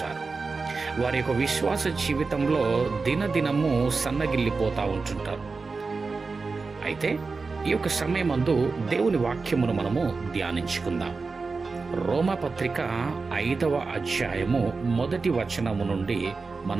వారి యొక్క విశ్వాస జీవితంలో దినదినము సన్నగిల్లిపోతూ ఉంటుంటారు. అయితే ఈ యొక్క సమయమందు దేవుని వాక్యమును మనము ధ్యానించుకుందాం. రోమాపత్రిక 5వ అధ్యాయము 1వ వచనము నుండి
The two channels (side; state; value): left; quieter; 4.3 dB